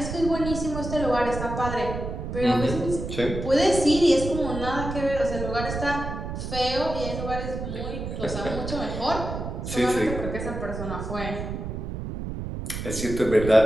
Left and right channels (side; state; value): right; noise; rumble, 6 dB below the sound